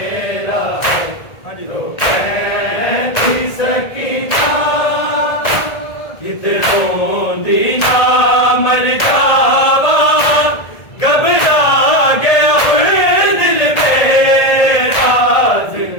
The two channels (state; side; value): late; right; 1.8 ms